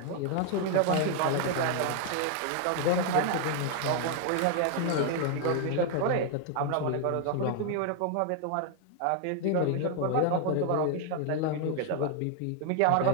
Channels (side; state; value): both; different; correlation 0.00